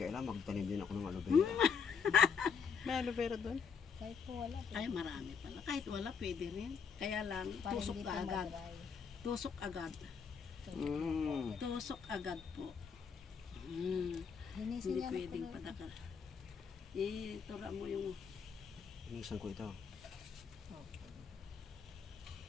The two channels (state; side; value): quieter; right; 6.3 dB